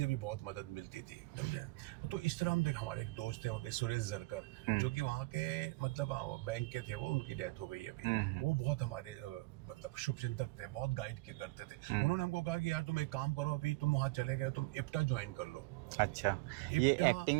भी बहुत मदद मिलती थी, समझे। तो इस तरह हम देख, हमारे एक दोस्त थे वहाँ के, सुरेश जरकर, जो कि वहाँ के मतलब बैंक के थे, वो उनकी डेथ हो गई है अभी, वो बहुत हमारे मतलब शुभचिंतक थे, बहुत गाइड किया करते थे। उन्होंने हमको कहा कि यार तुम एक काम करो, अभी तुम वहाँ चले गए, तुम इप्टा ज्वाइन कर लो। अच्छा, ये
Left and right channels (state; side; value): quieter; left; 23.1 dB